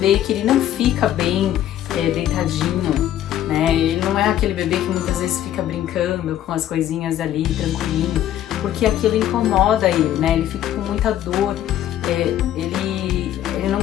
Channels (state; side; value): quieter; right; 11.9 dB